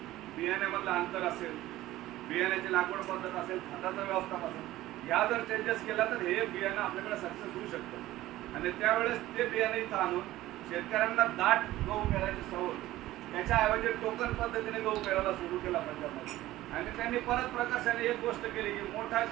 बियाण्यामधलं अंतर असेल, बियाण्याची लागवड पद्धत असेल, खताचं व्यवस्थापन असेल, ह्या जर चेंजेस केला तर हे बियाणं आपल्याकडे सक्सेस होऊ शकतं. आणि त्यावेळेस ते बियाणे इथं आणून शेतकऱ्यांना दाट गहू पेरायची सवय, त्याच्याऐवजी टोकन पद्धतीने गहू पेरायला सुरू केला पंजाबमध्ये. आणि त्यांनी परत प्रकर्षाने एक गोष्ट केली की मोठा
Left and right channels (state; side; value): quieter; left; 15.9 dB